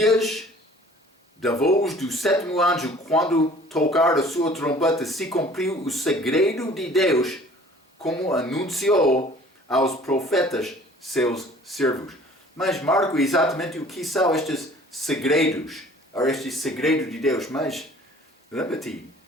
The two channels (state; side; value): normal; both; correlation 0.50